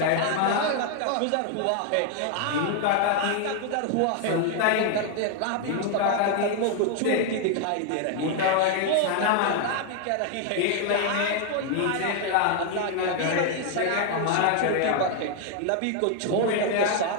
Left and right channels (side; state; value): both; different; correlation 0.00